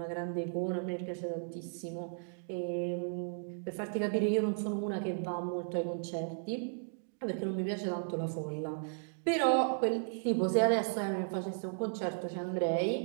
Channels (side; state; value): left; silent; digital silence